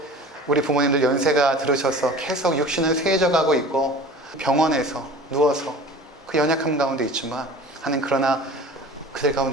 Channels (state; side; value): normal; both; correlation 0.41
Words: 우리 부모님들 연세가 들으셔서 계속 육신은 쇠해져 가고 있고 병원에서 누워서 그 연약함 가운데 있지만 하나님 그러나 그들